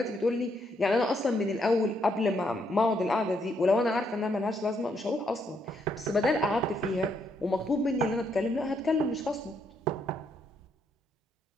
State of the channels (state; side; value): normal; both; correlation 0.75